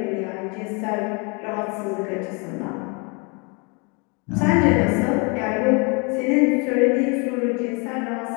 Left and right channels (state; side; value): quieter; right; 32.2 dB